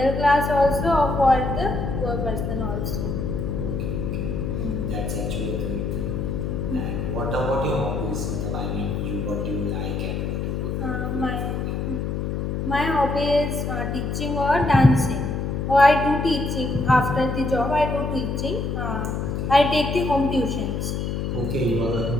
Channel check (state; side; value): noise; left; hum, 2 dB below the sound